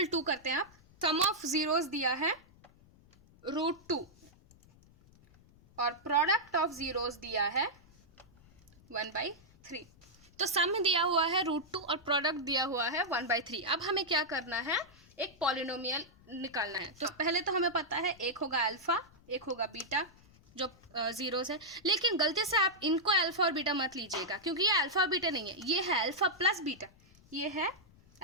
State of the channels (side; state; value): left; noise; rumble, 27 dB below the sound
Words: 2 करते हैं आप। सम ऑफ जीरोज दिया है √2 और प्रोडक्ट ऑफ जीरोज दिया है 1/3। तो सम दिया हुआ है √2 और प्रोडक्ट दिया हुआ है 1/3। अब हमें क्या करना है, एक पॉलिनोमियल निकालना है। तो पहले तो हमें पता है एक होगा अल्फा एक होगा बीटा, जो जीरोस है। लेकिन गलती से आप इनको अल्फा और बीटा मत लीजिएगा, क्योंकि ये अल्फा और बीटा नहीं है, ये है अल्फा प्लस बीटा, ये है